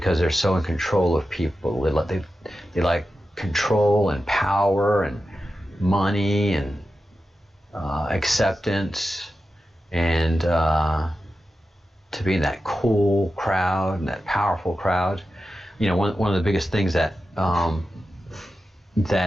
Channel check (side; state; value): both; normal; correlation 0.91